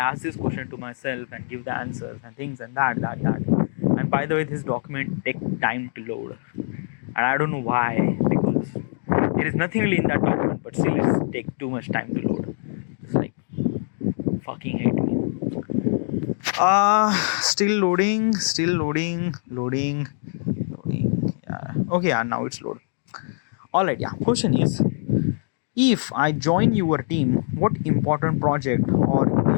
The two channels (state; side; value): silent; right; 63 dB below the other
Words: this question to myself and give the answers and things and that. And by the way, this document take time to load, and I don't know why, because there is nothing really in that document, but still it's take too much time to load. It's like fucking hate me. Still loading. Yeah. Okay, yeah, now it's load. All right, yeah. Question is, if I join your team, what important project or